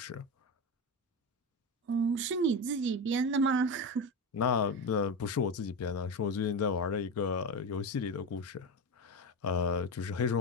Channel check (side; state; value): both; normal; correlation 0.19